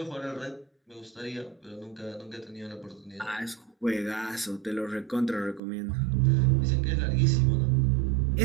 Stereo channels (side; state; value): left; drops out; at 5.6 s